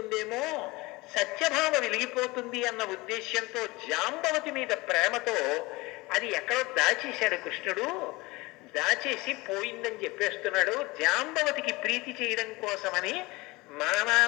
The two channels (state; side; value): quieter; right; 22.5 dB